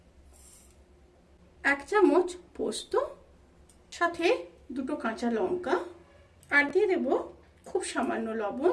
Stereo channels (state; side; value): identical; both; correlation 1.00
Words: 1 চামচ পোস্ত, সাথে 2টো কাঁচা লঙ্কা, আর দিয়ে দেব খুব সামান্য